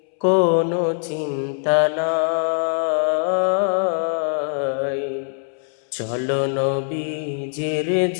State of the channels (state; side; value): silent; right; 64 dB below the other